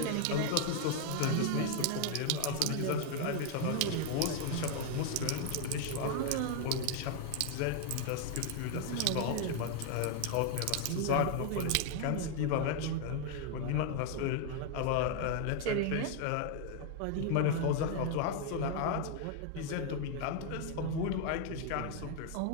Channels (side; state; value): both; different; correlation 0.00